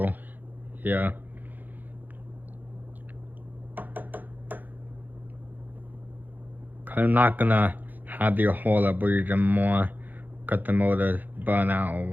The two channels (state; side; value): late; left; 0.085 ms